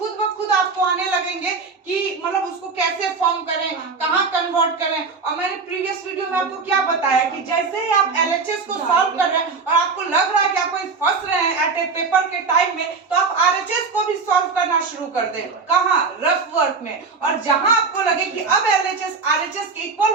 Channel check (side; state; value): left; quieter; 4.6 dB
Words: ब खुद आपको आने लगेंगे कि मतलब उसको कैसे फॉर्म करें, कहाँ कन्वर्ट करें। और मैंने प्रीवियस वीडियो में आपको क्या बताया कि जैसे ही आप LHS को सॉल्व कर रहे हैं और आपको लग रहा है कि आप कोई फंस रहे हैं एट ए पेपर के टाइम में, तो आप RHS को भी सॉल्व करना शुरू कर दें। कहाँ, रफ वर्क में। और जहां आपको लगे कि अब LHS RHS के इक्वल